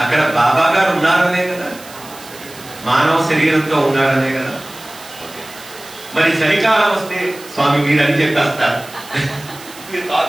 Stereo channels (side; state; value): right; noise; hiss, 18 dB below the sound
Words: అక్కడ బాబా గారు ఉన్నారనే కదా, మానవ శరీరంతో ఉన్నారనే కదా. మరి చలికాలం వస్తే స్వామి మీరు అని చెప్పేస్తారు,